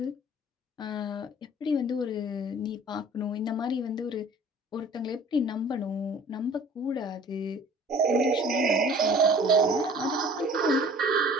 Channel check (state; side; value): normal; both; correlation 0.48